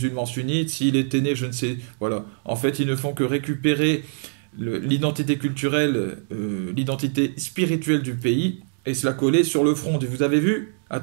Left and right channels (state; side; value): silent; left; digital silence